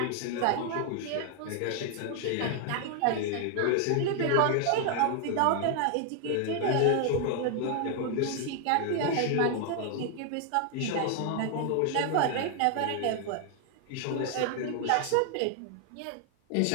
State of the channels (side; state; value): both; different; correlation 0.00